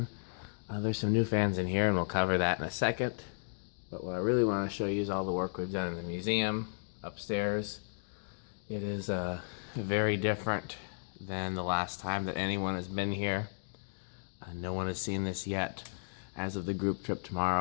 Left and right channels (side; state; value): right; silent; digital silence